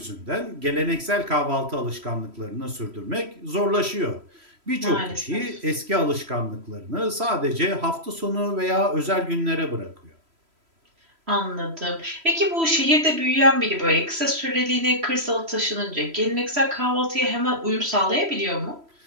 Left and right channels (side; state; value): left; late; 3.1 ms